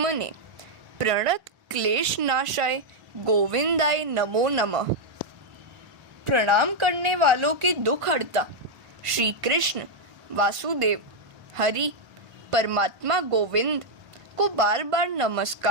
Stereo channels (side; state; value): left; late; 1.5 ms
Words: प्रणत क्लेश नाशाय गोविंदाय नमो नमः। प्रणाम करने वालों के दुख हरता श्री कृष्ण वासुदेव हरि परमात्मा गोविंद को बार बार